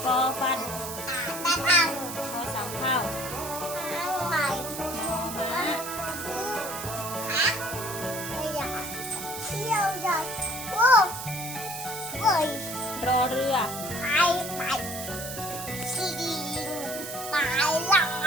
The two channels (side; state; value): right; noise; hiss, 8 dB below the sound